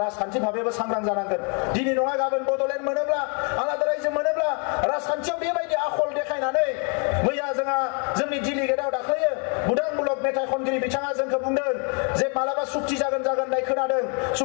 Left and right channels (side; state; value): right; quieter; 38.2 dB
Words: राजखान्थि भाबैबो सांग्रां जानांगोन दिनै नङा गाबोन बड'लेण्ड मोनोब्ला आलादा रायजो मोनोब्ला राजखान्थियाव बेबायदि आखल देखायनानै मैया जोंहा जोंनि डिलिगेटआव दाख्लैयो बुदां ब्लक मेथाइ खनगिरि बिथाङा जोंखौ बुंदों जे मालाबा सुक्ति जागोन होननाय खोनादों